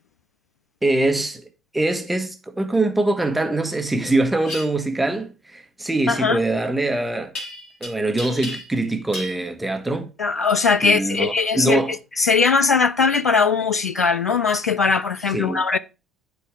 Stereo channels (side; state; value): both; normal; correlation 0.63